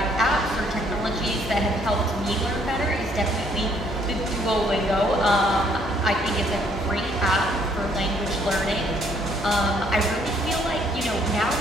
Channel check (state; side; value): normal; both; correlation 0.66